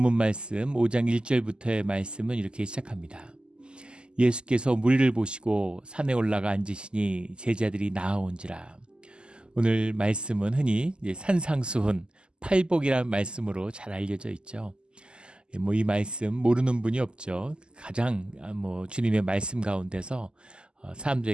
말씀 5장 1절부터의 말씀은 이렇게 시작합니다. 예수께서 무리를 보시고 산에 올라가 앉으시니 제자들이 나아온지라. 오늘 말씀은 흔히 산상수훈, 팔복이라는 말씀으로 잘 알려져 있죠. 이 말씀 모르는 분이 없죠. 가장 주님의 말씀 가운데서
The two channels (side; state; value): left; late; 0.048 ms